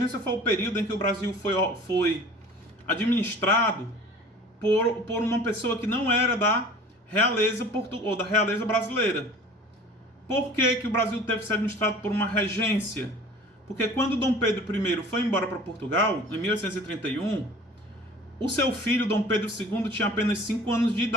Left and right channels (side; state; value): both; normal; correlation 0.45